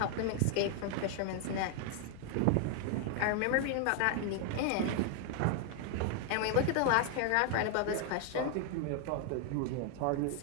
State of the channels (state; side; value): different; both; correlation 0.00